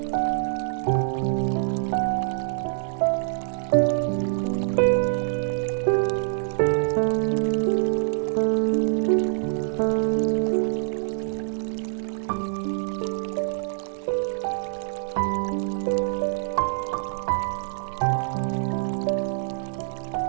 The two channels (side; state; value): left; silent; 61 dB below the other